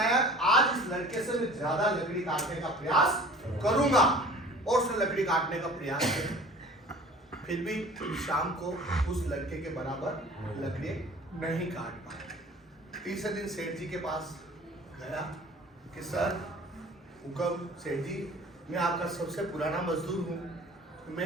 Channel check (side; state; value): both; normal; correlation 0.46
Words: आज इस लड़के से मैं ज्यादा लकड़ी काटने का प्रयास करूंगा, और उसने लकड़ी काटने का प्रयास किया। फिर भी शाम को उस लड़के के बराबर लकड़ी नहीं काट पाया। तीसरे दिन सेठ जी के पास गया कि सर हुक्म, सेठ जी मैं आपका सबसे पुराना मजदूर हूँ,